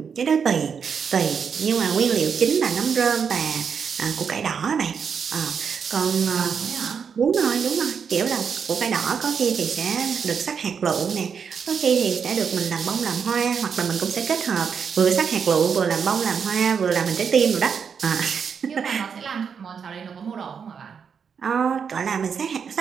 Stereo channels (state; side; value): quieter; left; 6.6 dB